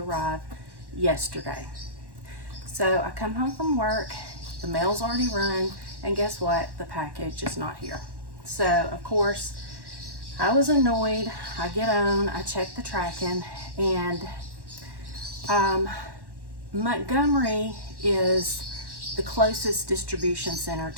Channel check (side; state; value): left; late; 1.1 ms